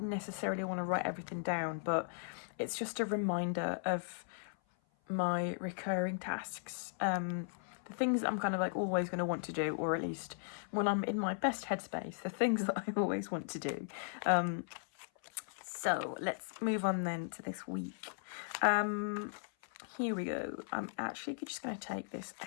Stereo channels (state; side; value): silent; right; 53 dB below the other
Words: necessarily want to write everything down, but it's just a reminder of my recurring tasks. The things that I'm kind of like always going to want to do, or at least when I'm in my best headspace, the things that I always want to do. So let's move on then to this week. Here we go. I'm actually just going to take this